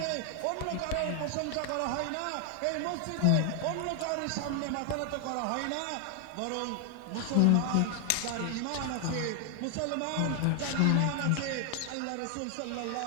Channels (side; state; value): both; different; correlation 0.00